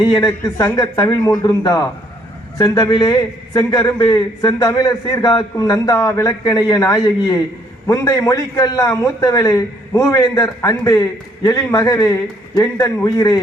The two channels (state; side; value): normal; both; correlation 0.65